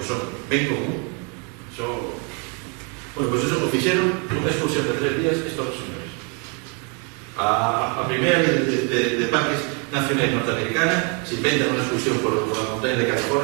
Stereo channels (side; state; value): left; quieter; 35.7 dB